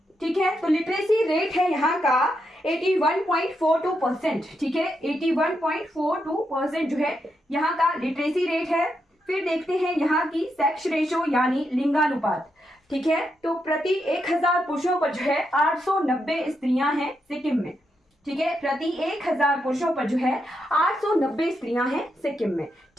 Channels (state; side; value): normal; both; correlation 0.82